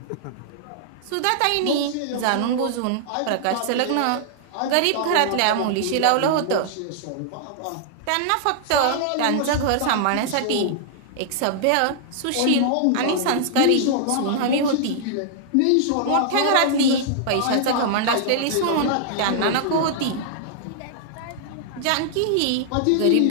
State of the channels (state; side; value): different; both; correlation -0.01